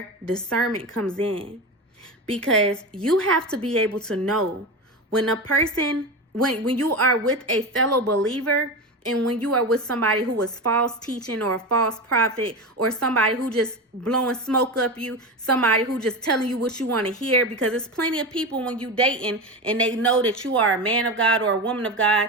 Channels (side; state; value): both; normal; correlation 0.22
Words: discernment comes in. Because you have to be able to know when a person, when you are with a fellow believer, and when you are with somebody who is false teaching or a false prophet, or somebody who just blowing smoke up you, somebody who just telling you what you want to hear. Because there's plenty of people when you dating and they know that you are a man of God or a woman of